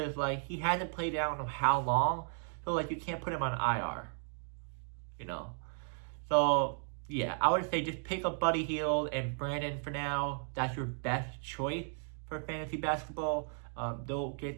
he hasn't played out in how long, so you can't put him on IR. So yeah, I would say just pick up Buddy Hield and Brandon for now. That's your best choice for fantasy basketball. They'll get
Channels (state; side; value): silent; left; 54 dB below the other